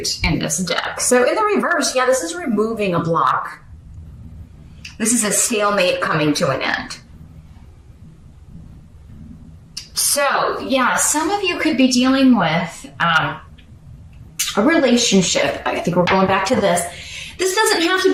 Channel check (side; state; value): both; identical; correlation 1.00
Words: in this deck. So in the reverse, this is removing a block. This is a stalemate coming to an end. So, some of you could be dealing with a relationship. I think we're going back to this. This doesn't have to